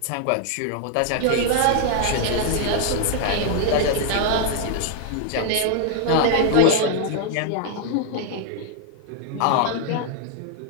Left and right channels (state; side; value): different; both; correlation 0.00